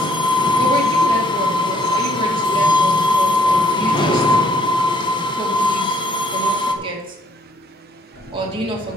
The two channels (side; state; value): both; normal; correlation 0.65